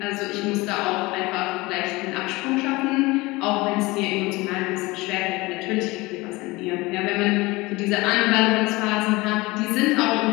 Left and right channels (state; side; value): quieter; right; 22.0 dB